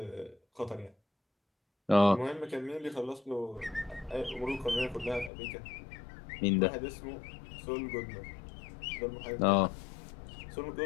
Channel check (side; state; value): right; drops out; at 5.3 s